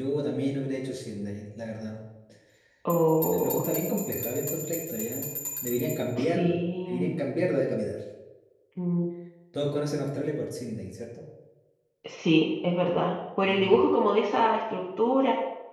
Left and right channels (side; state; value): both; identical; correlation 1.00